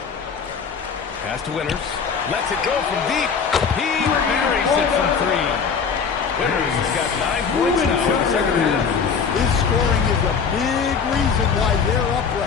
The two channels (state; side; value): quieter; right; 6.0 dB